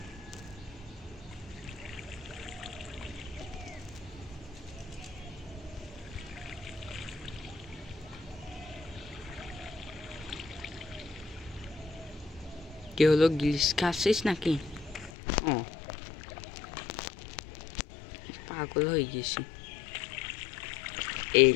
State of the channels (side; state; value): right; drops out; at 15.1 s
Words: কি হলো, গ্লিচ খাচ্ছিস নাকি? ও, পাগল হয়ে গেছি।